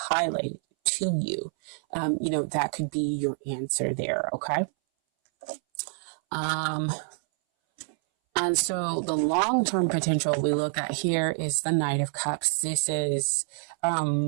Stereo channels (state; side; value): silent; left; 60 dB below the other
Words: highlighted to you. That could be your answer there. Okay. And so the long-term potential we look at here is the Knight of Cups. This is,